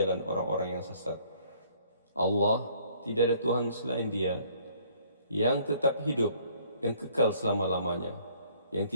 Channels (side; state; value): both; inverted; correlation -0.60